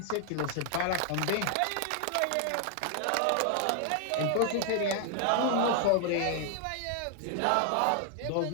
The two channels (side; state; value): both; different; correlation 0.00